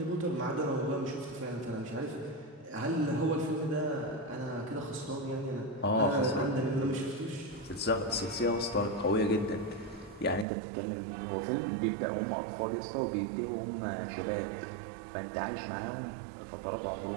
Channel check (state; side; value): drops out; left; at 10.5 s